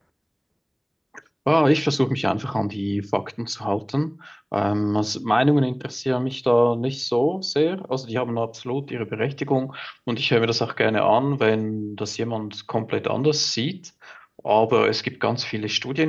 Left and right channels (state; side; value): identical; both; correlation 1.00